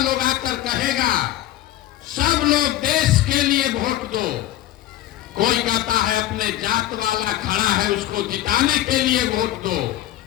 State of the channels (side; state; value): right; quieter; 13.9 dB